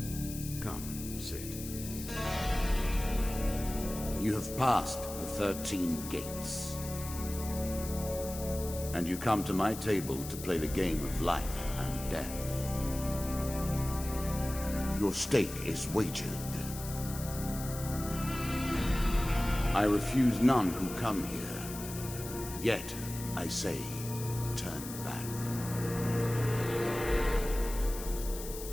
Come, sit. You have passed the 13 gates. And you come to my table to play the game of life and death. Your stake is wagered. I refuse none who come here. Yet, I say, turn back.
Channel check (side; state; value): left; noise; hiss, 11 dB below the sound